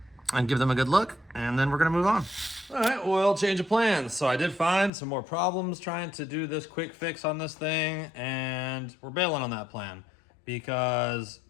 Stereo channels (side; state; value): right; drops out; at 4.9 s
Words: and give them a good look, and then we're gonna move on. All right, well, change of plans. So I did find some more problems trying to do this quick fix on this thing, and we're bailing on that plan because